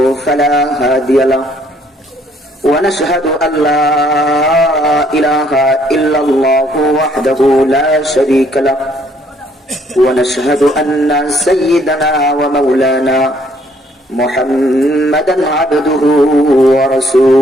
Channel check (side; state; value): both; normal; correlation 0.65